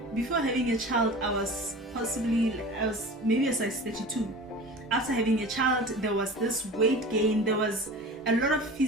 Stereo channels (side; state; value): both; normal; correlation 0.37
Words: before having a child, I was maybe a size 32. After having a child, there was this weight gain. There was a lot of